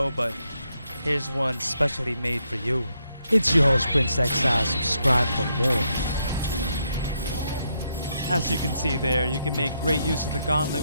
but here's one specially made for you. It's your host, Prince Exile. Subscribe for more. As you can see there, you can make great use of the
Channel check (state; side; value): inverted; both; correlation -0.78